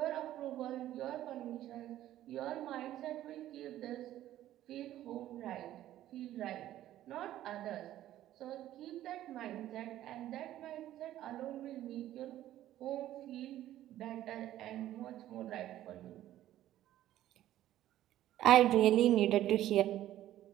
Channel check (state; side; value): quieter; left; 13.3 dB